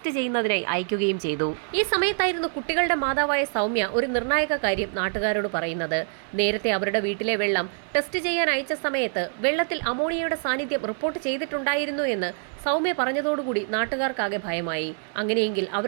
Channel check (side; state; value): left; silent; 56 dB below the other